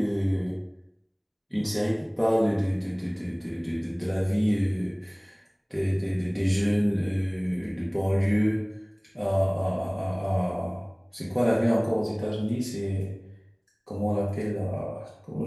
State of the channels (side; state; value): both; identical; correlation 1.00